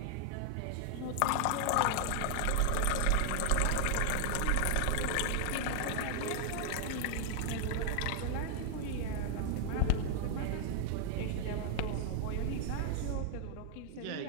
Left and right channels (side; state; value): both; different; correlation 0.00